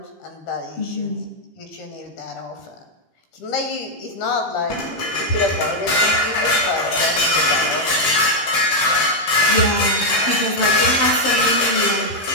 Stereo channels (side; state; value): right; late; 15 ms